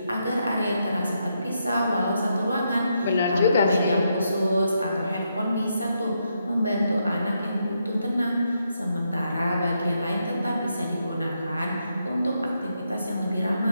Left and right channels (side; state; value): both; inverted; correlation -0.80